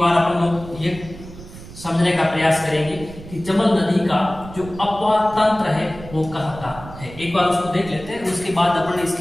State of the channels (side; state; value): right; noise; rumble, 15 dB below the sound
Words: अपन लोग ये समझने का प्रयास करेंगे कि चंबल नदी का जो अपवाह तंत्र है वो कहाँ का है। एक बार उसको देख लेते हैं, उसके बाद अपन